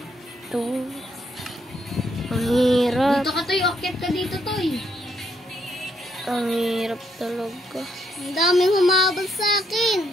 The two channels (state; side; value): normal; both; correlation 0.74